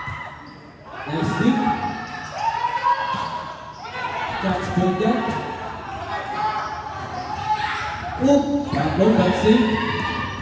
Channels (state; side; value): identical; both; correlation 1.00